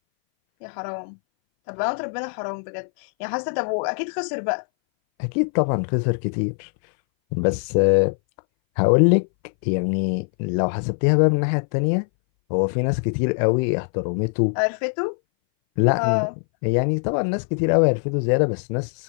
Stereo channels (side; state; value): right; silent; 60 dB below the other